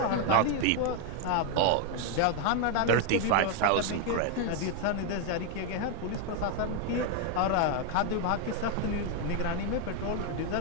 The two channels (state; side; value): different; both; correlation 0.01